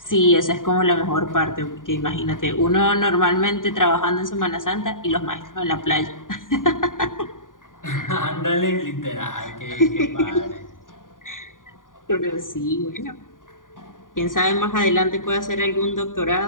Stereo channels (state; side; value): late; right; 0.89 ms